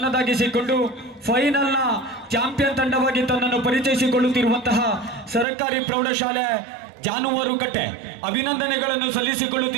ಫೈನಲ್ ನ ಚಾಂಪಿಯನ್ ತಂಡವಾಗಿ ತನ್ನನ್ನು ಪರಿಚಯಿಸಿಕೊಳ್ಳುತ್ತಿರುವಂತಹ ಸರ್ಕಾರಿ ಪ್ರೌಢಶಾಲೆ ಜಾನುವಾರುಕಟ್ಟೆ ಅಭಿನಂದನೆಗಳನ್ನು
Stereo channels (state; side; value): drops out; left; at 5.5 s